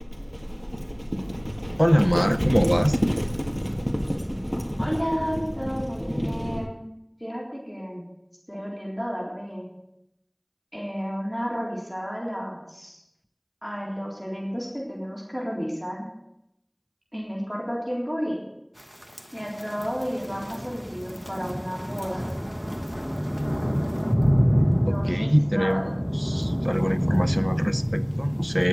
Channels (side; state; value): both; identical; correlation 1.00